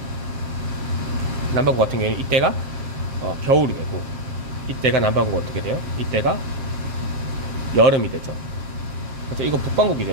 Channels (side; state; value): left; late; 7.5 ms